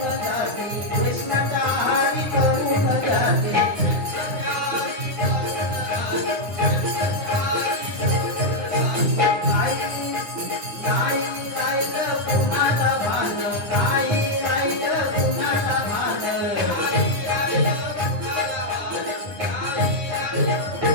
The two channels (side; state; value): left; late; 9.9 ms